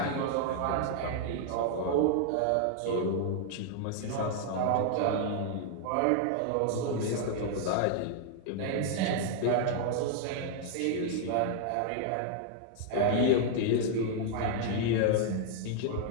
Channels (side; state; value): both; different; correlation 0.00